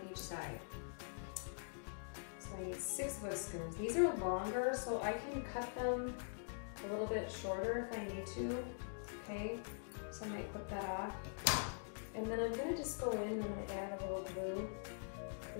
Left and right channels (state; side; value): silent; right; digital silence